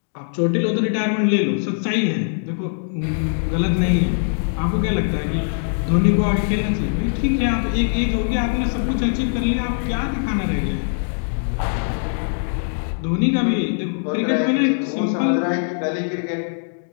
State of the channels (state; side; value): silent; right; digital silence